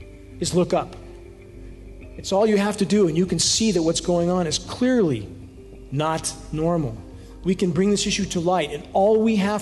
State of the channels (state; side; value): identical; both; correlation 1.00